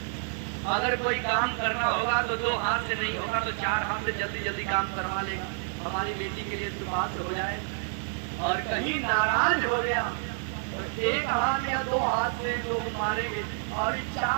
अगर कोई काम करना होगा तो 2 हाथ से नहीं होगा तो 4 हाथ से जल्दी जल्दी काम करवा लेगा, हमारी बेटी के लिए सुपास हो जाए। और कहीं नाराज हो गया तो 1 हाथ या 2 हाथ से जो मारेंगे और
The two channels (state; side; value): silent; left; 59 dB below the other